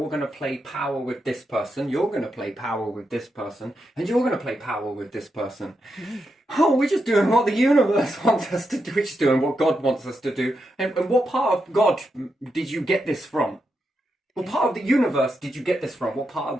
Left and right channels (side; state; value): both; normal; correlation 0.85